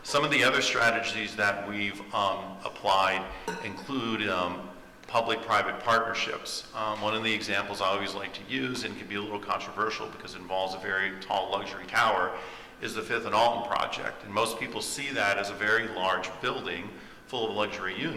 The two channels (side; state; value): both; identical; correlation 1.00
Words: Some of the other strategies that we've applied include public-private partnerships. One of the examples I always like to use, and can be a little controversial because it involves a very tall luxury tower, is the Fifth and Alton project. And most people see that as a very large building full of luxury